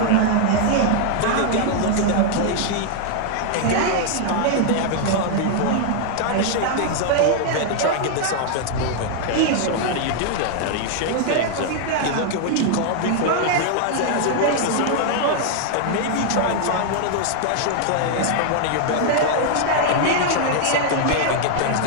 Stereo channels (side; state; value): both; different; correlation 0.00